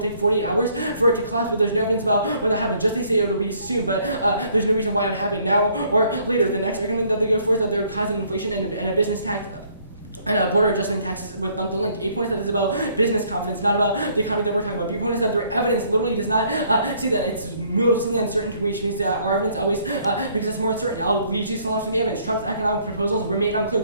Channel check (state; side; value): inverted; both; correlation -0.64